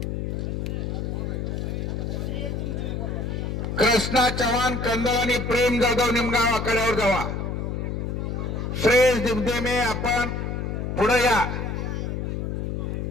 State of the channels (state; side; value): noise; left; hum, 3 dB below the sound